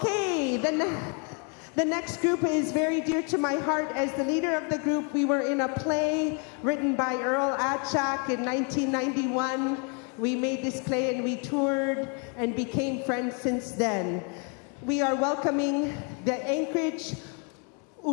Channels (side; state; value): right; quieter; 36.1 dB